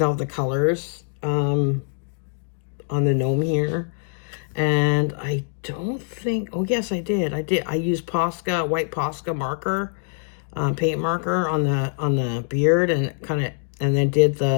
out the colors on the gnome here. And I don't think, oh yes, I did. I used Posca, white Posca marker, paint marker on the beard and then did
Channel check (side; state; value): right; silent; digital silence